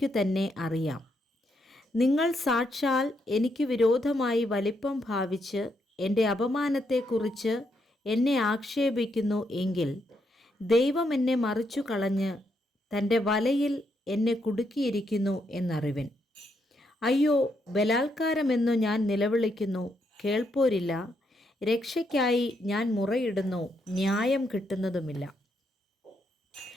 തന്നെ അറിയാം. നിങ്ങൾ സാക്ഷാൽ എനിക്ക് വിരോധമായി വലിപ്പം ഭാവിച്ച് എൻ്റെ അപമാനത്തെക്കുറിച്ച് എന്നെ ആക്ഷേപിക്കുന്നു എങ്കിൽ, ദൈവം എന്നെ മറിച്ചു കളഞ്ഞ് തൻ്റെ വലയിൽ എന്നെ കുടുക്കിയിരിക്കുന്നു എന്നറിവിൻ. അയ്യോ, ബലാത്കാരമെന്നു ഞാൻ നിലവിളിക്കുന്നു, കേൾപ്പോരില്ല. രക്ഷയ്ക്കായി ഞാൻ മുറയിടുന്നു, ന്യായം കിട്ടുന്നതുമില്ല.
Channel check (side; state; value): both; normal; correlation 0.78